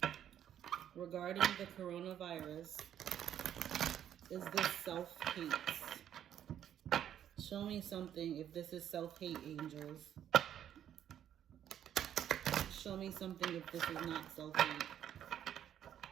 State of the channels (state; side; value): quieter; left; 10.2 dB